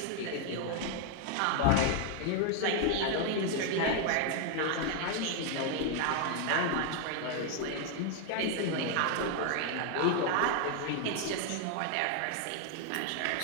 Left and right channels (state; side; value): different; both; correlation 0.00